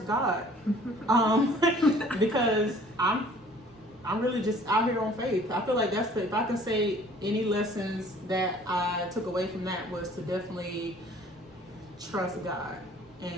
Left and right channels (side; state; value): both; normal; correlation 0.53